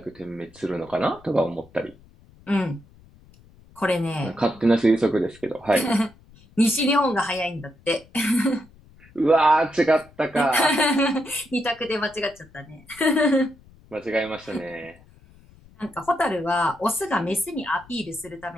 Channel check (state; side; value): noise; left; rumble, 26 dB below the sound